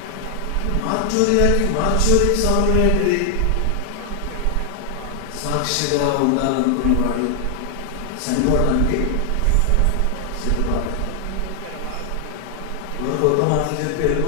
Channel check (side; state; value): both; different; correlation 0.00